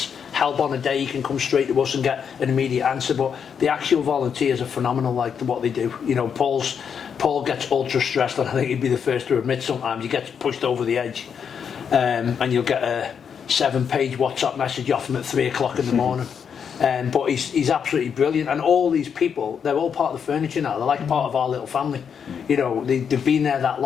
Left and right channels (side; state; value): right; quieter; 7.2 dB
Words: help on a day, he can come straight to us and get an immediate answer. But the actual volunteers are phenomenal, like what they do. You know, Paul gets ultra stressed, and I think he'd be the first to admit sometimes he gets pushed over the edge, and you'll get a 7-page WhatsApp message off him at 3 o'clock in the morning. But he's absolutely brilliant, and all these people, they're all part of the furniture now. They're like part of our little family. You know, they've been there that